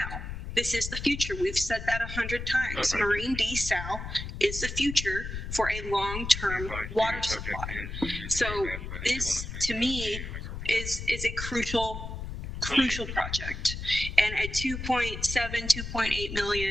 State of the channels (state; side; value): noise; left; rumble, 7 dB below the sound